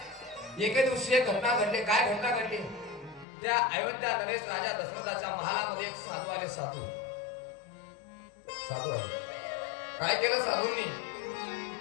एके दिवशी एक घटना घडली. काय घटना घडली? त्या अयोध्या नरेश राजा दशरथाच्या महालामध्ये एक साधू आले. साधू आले. काय केलं साधूंनी?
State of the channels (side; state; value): right; drops out; at 3.2 s